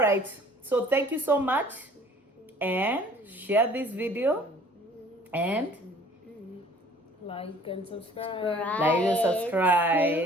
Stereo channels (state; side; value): normal; both; correlation 0.52